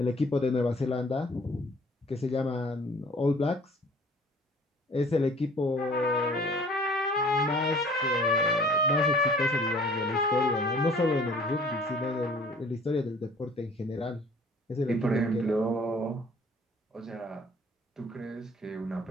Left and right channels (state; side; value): normal; both; correlation 0.52